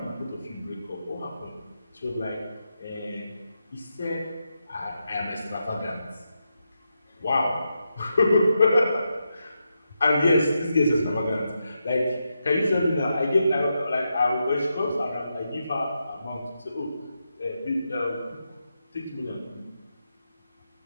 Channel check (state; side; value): inverted; both; correlation -0.85